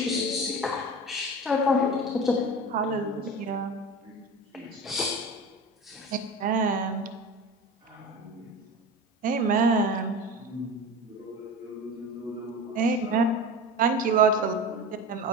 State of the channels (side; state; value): both; normal; correlation 0.30